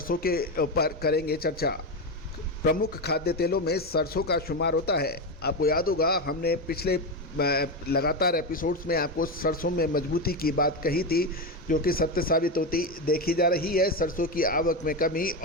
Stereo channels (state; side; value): normal; both; correlation 0.13